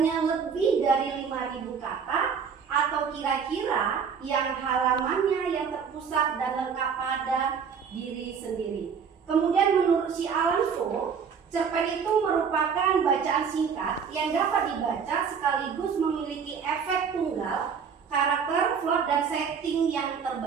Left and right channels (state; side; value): quieter; left; 6.6 dB